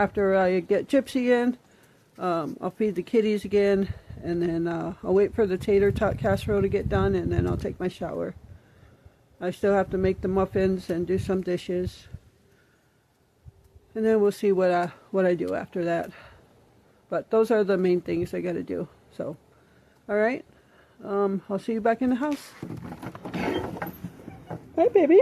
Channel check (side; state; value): both; identical; correlation 1.00